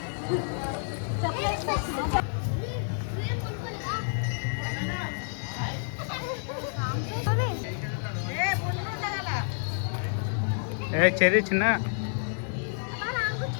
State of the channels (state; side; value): silent; right; digital silence